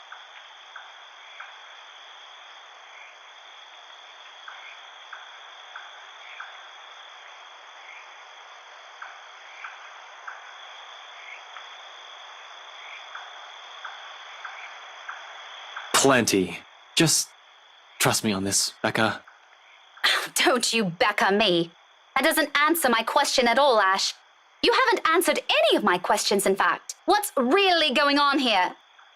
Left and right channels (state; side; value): identical; both; correlation 1.00